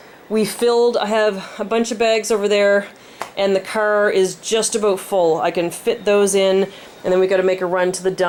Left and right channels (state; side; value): identical; both; correlation 1.00